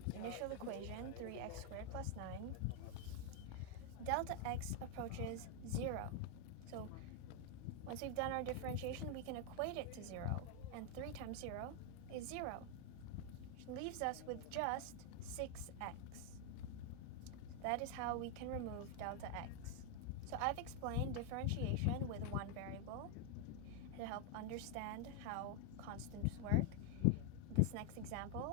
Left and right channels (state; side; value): different; both; correlation 0.01